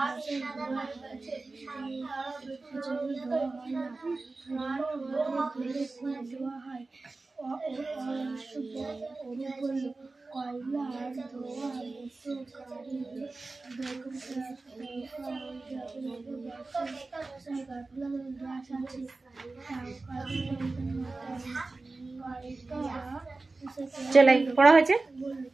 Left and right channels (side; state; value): left; quieter; 3.5 dB